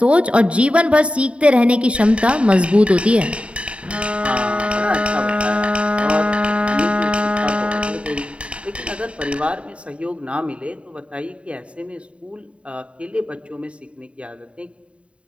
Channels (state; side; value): late; left; 0.061 ms